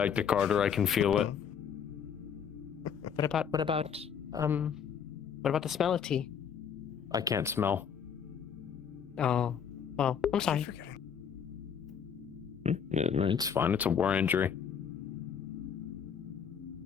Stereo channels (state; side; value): quieter; right; 7.6 dB